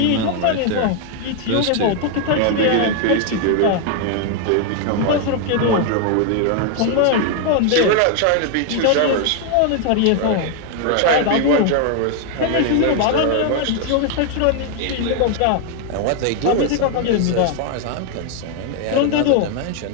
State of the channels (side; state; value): both; different; correlation 0.00